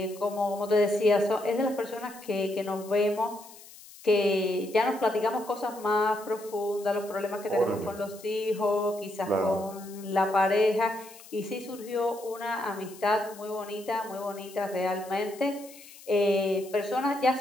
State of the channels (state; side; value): noise; left; hiss, 19 dB below the sound